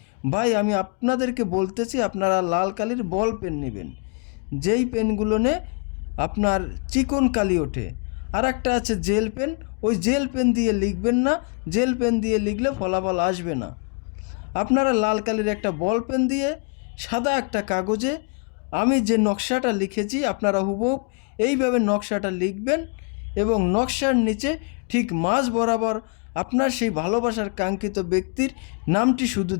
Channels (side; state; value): right; quieter; 35.2 dB